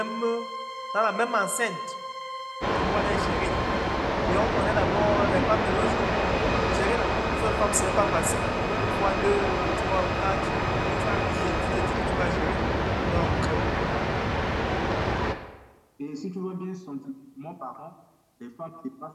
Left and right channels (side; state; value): both; identical; correlation 1.00